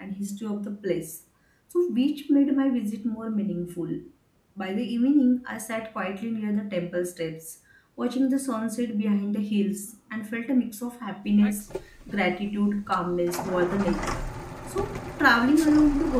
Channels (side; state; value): both; identical; correlation 1.00